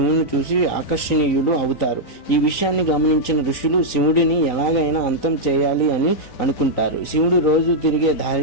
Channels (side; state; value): right; late; 3.9 ms